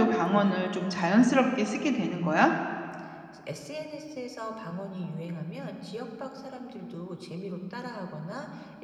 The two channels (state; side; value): identical; both; correlation 1.00